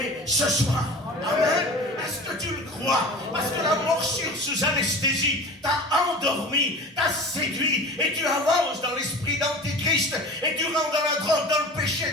ce soir. Amen. Est-ce que tu le crois? Parce que la morsure sous anesthésie t'a endormi, t'a séduit, et tu avances dans l'esprit d'Antichrist, et tu rentres dans la drogue, dans le péché,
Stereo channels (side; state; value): both; normal; correlation 0.36